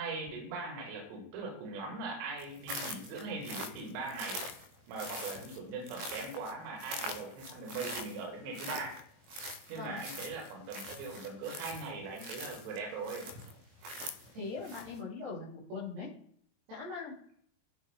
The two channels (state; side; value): late; left; 22 ms